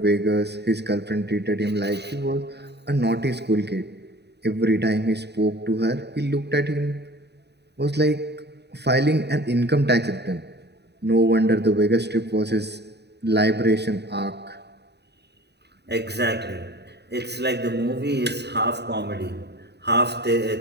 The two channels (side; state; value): left; late; 0.49 ms